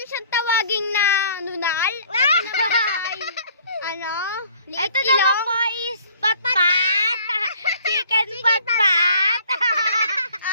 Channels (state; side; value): inverted; both; correlation -0.55